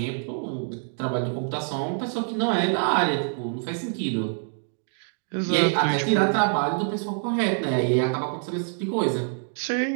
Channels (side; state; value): left; silent; 61 dB below the other